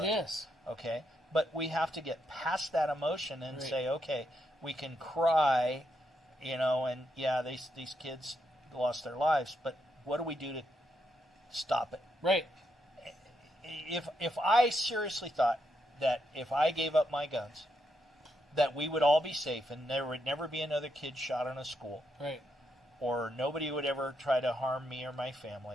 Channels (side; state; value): both; normal; correlation 0.80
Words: It is. Okay, but we have to get past that emotion and Right. say, okay, we can cry, and yeah, these kids lost their lives, but what do we do to stop it? Right. If I seriously thought that if I gave up my guns, that we would all be safe and there would never be another kid shot in a school, Right. or nobody would ever try to harm me or my